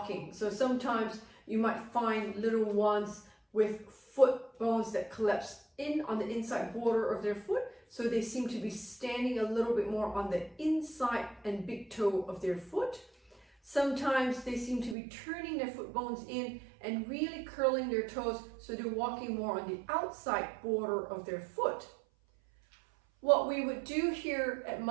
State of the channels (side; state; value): left; drops out; at 15.0 s